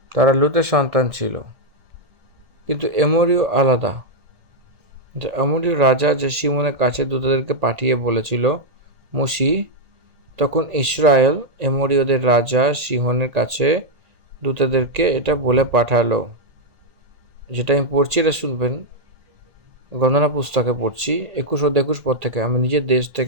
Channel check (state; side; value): late; left; 1.8 ms